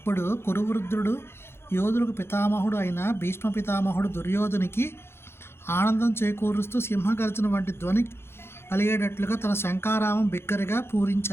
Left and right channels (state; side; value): late; right; 0.12 ms